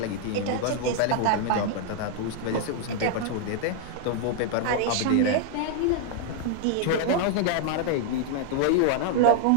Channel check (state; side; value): different; both; correlation -0.01